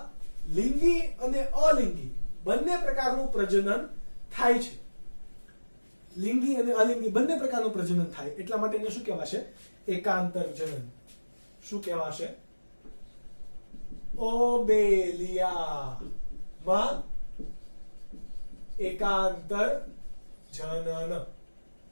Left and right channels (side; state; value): both; inverted; correlation -1.00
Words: લિંગી અને અલિંગી બંને પ્રકારનું પ્રજનન થાય છે. લિંગી અને અલિંગી બંને પ્રકારનું પ્રજનન થાય, એટલા માટે એને શું કહેવાશે? એકાંતર જનન. શું કહેવાશે? ઓબેલિયામાં એકાંતર જનન.